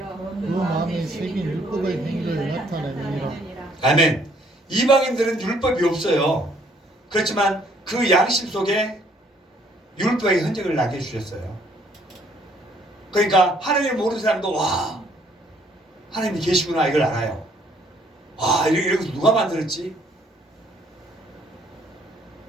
그 마음에 새긴 율법의 행위를 나타내느니라. 아멘. 이방인들은 율법이 없어요. 그렇지만 그 양심 속에 율법의 흔적을 나게 해주셨어요. 그러니까 하나님을 모르는 사람도 와 하나님이 계시구나 이걸 알아요. 와 이런 거 누가 만들었지?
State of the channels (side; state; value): both; normal; correlation 0.64